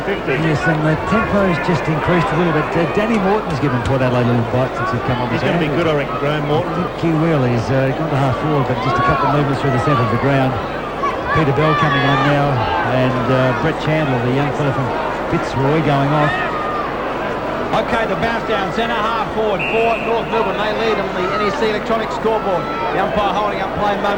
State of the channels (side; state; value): both; identical; correlation 1.00